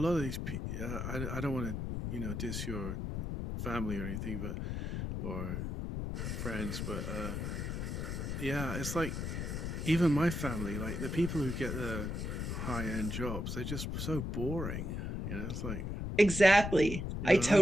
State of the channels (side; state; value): left; noise; rumble, 3 dB below the sound